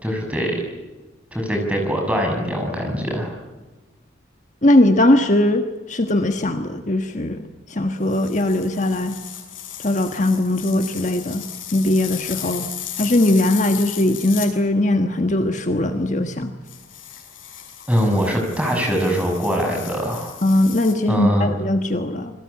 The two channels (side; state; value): both; normal; correlation 0.70